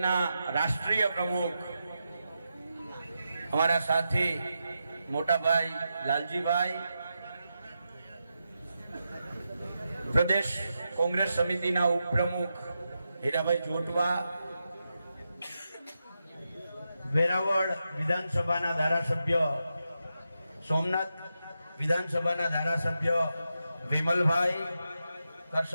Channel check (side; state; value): both; inverted; correlation -0.87